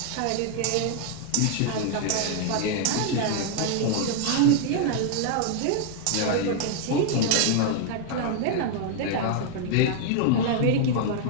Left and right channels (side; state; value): both; different; correlation 0.00